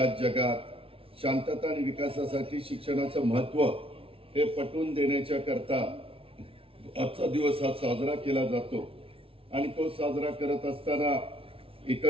जगात शांतता आणि विकासासाठी शिक्षणाचं महत्त्व हे पटवून देण्याच्या करता आजचा दिवस हा साजरा केला जातो. आणि तो साजरा करत असताना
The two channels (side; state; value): left; late; 0.26 ms